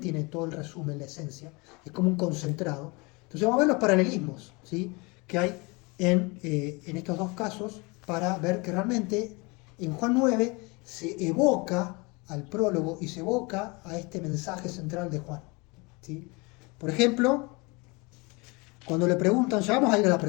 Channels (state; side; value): quieter; right; 27.4 dB